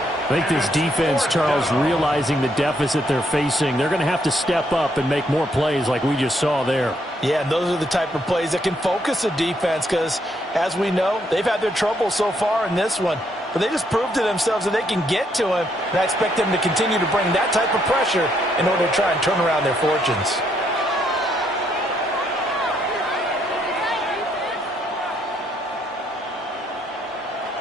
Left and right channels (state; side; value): normal; both; correlation 0.73